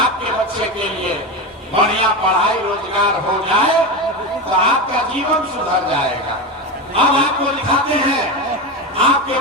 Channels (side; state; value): both; normal; correlation 0.18